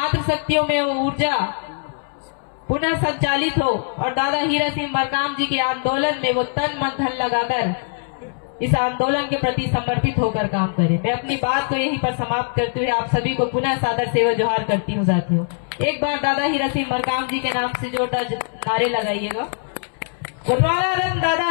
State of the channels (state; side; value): silent; right; 65 dB below the other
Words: शक्तियों में वो ऊर्जा पुनः संचालित हो और दादा हीरा सिंह मरकाम जी के आंदोलन में वो तन मन धन लगाकर इस आंदोलन के प्रति समर्पित होकर काम करे। मैं अपनी बात को यहीं पर समाप्त करते हुए आप सभी को पुनः सादर सेवा जोहार करती हूँ साथियों। एक बार दादा हीरा सिंह मरकाम जी के नाम से जोरदार नारे लगाइएगा। गोंडवाना रत्न दादा